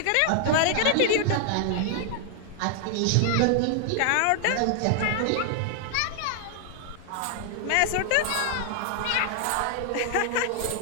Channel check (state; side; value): different; both; correlation 0.00